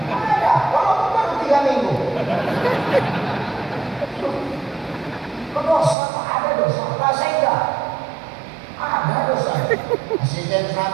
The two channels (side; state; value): left; drops out; at 6.0 s